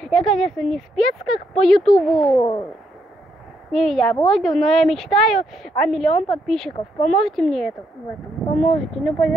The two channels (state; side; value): normal; both; correlation 0.76